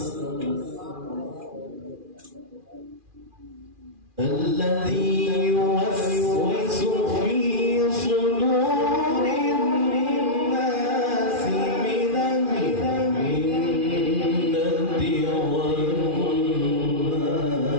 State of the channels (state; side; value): late; left; 2.4 ms